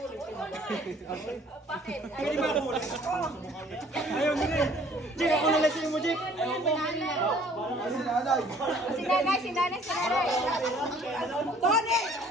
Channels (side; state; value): both; normal; correlation 0.56